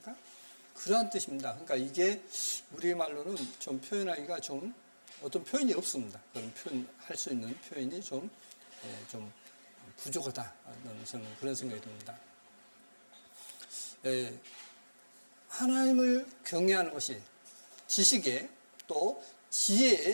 그러한 뜻입니다. 그러니까 이게 우리 말로는 좀 표현하기가 좀 어떤 표현이 없습니다. 그런 표현할 수 있는 표현이 좀 부족하다는 저는 그런 생각이 듭니다. 하나님을 경외하는 것이 지식의 또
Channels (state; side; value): inverted; both; correlation -1.00